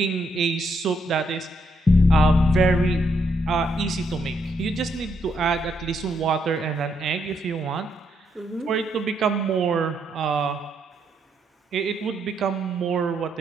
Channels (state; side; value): normal; both; correlation 0.76